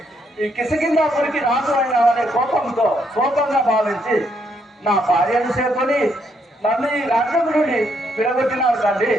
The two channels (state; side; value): normal; both; correlation 0.74